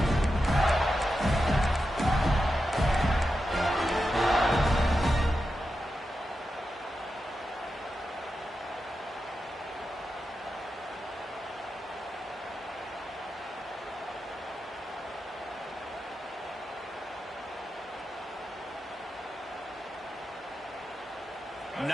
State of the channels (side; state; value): both; normal; correlation 0.89